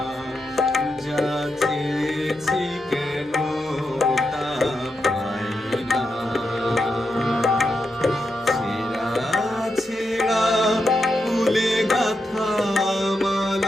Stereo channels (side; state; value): both; normal; correlation 0.86